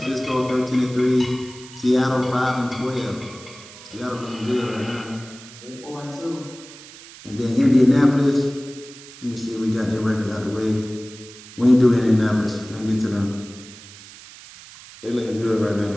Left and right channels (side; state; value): right; noise; hiss, 18 dB below the sound